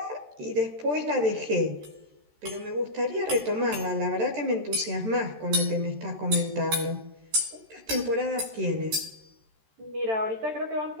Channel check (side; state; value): left; late; 13 ms